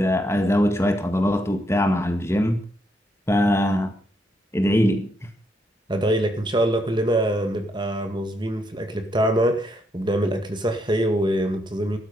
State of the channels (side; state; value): both; normal; correlation 0.77